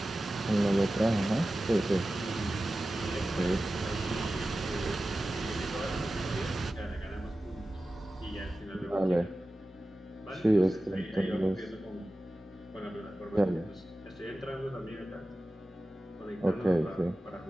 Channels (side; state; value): both; normal; correlation 0.95